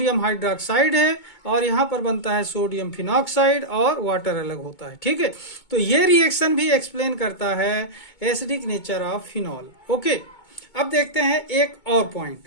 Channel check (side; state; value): right; late; 2.2 ms